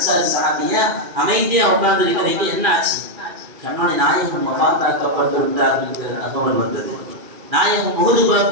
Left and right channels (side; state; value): left; late; 2.4 ms